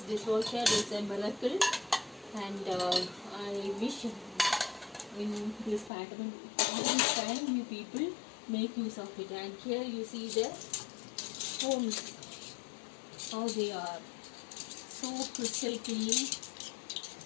dishwasher is a miracle, and I wish in this pattern all this time you people make use of it. And here you see the homes, how they are so crystal clean.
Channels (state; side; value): drops out; right; at 5.9 s